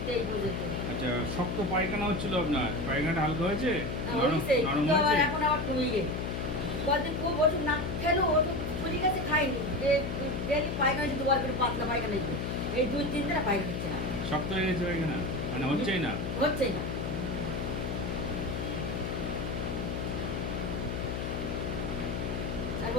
এই পর্যন্ত। আচ্ছা, শক্ত পায়খানা হচ্ছিল আপনার? পায়খানাটা হালকা হয়েছে? নরম হয়েছে, নরম কিন্তু আবার হয়েছে? এখন আবার কমে গেছে। কদিন খুব ওষুধ না খেলেও ওষুধ ফুলি গেছে, খাইনি। ডেলি পায়খানা হচ্ছে, দুবার করে পাতলা পায়খানা হচ্ছে। এই 2-3 দিনে পায়খানা হচ্ছে না, শক্ত হয়ে গেছে পায়খানা? মানে হচ্ছেই না? হচ্ছেই না। আর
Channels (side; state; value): left; noise; hum, 3 dB below the sound